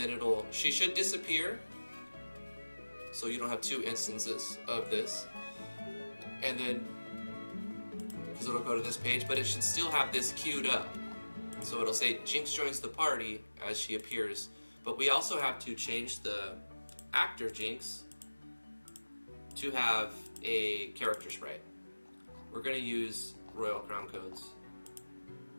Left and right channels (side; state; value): both; inverted; correlation -1.00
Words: she should disappear, so you don't have two instances of this. And then, because it'll go to this page, but it should still have this queued up. So it'll say Jinx joins the party as she appears. But we also have to change the actor Jinx to have a character sprite. We're going to use Royal Crown Code's